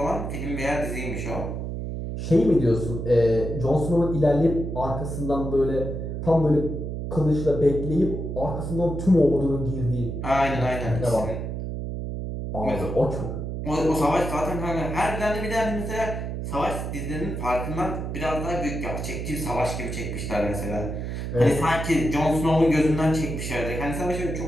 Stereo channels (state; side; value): noise; right; hum, 4 dB below the sound